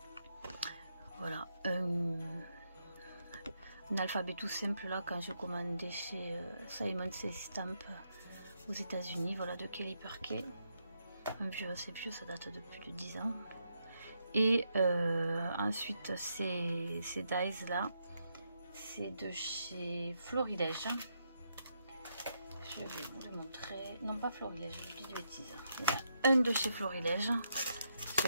voilà, un alphabet tout simple là, quand j'ai commandé chez Simon Says Stamp aux États-Unis. Voilà, de Kelly Perkey, un vieux, assez vieux, ça date de plus de 10 ans. Et ensuite ces dies là, c'est de chez Florilège. Je vais vous le montrer, non pas Florilège, je dis des bêtises. Il y a un de chez Florilège.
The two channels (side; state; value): both; inverted; correlation -0.79